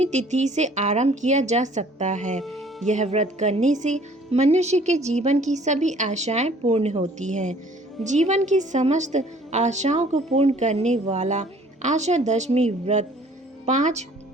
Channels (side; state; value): both; normal; correlation 0.55